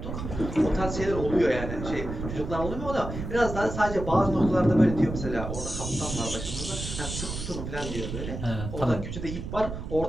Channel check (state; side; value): noise; right; rumble, 7 dB below the sound